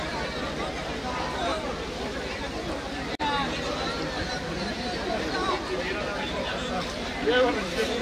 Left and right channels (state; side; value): identical; both; correlation 1.00